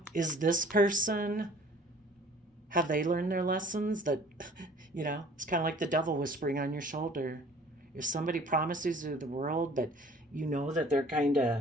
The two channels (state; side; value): normal; both; correlation 0.51